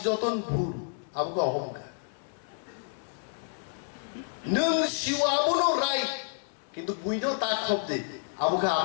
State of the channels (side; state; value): right; silent; digital silence